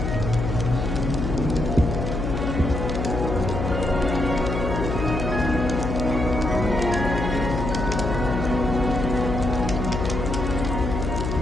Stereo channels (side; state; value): left; noise; hum, 2 dB below the sound